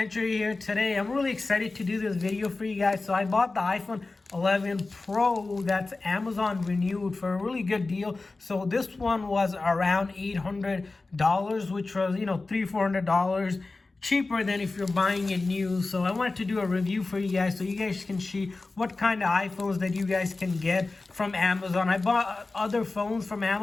here. Today I'm really excited to do this video for you guys. So I bought the iPhone 11 Pro that's Amazon renewed for a really good deal. So this one was around $800, which was, $300-400 cheaper than if you're buying it new. So I wanted to do a review for you guys so you guys can see what kind of iPhones that you guys can get from Amazon. I bought other phones from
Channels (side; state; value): right; quieter; 3.5 dB